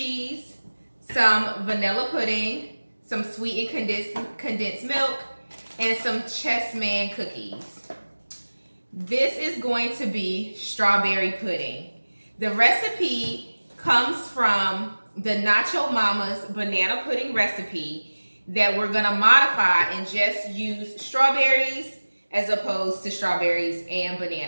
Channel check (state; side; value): inverted; both; correlation -1.00